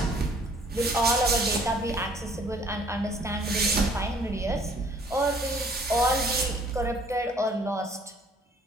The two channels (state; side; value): normal; both; correlation 0.58